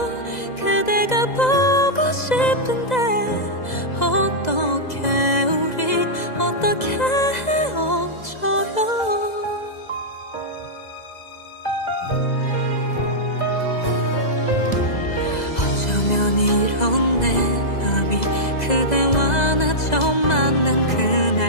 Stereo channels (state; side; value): late; right; 2.0 ms